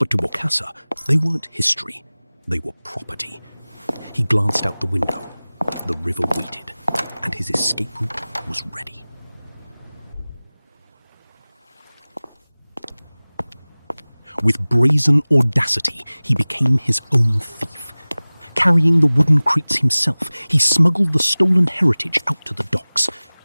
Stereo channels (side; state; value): both; inverted; correlation -0.99